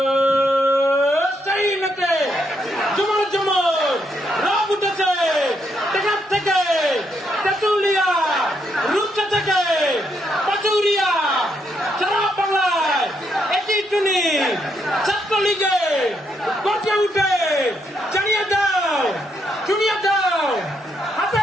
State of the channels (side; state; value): both; normal; correlation 0.77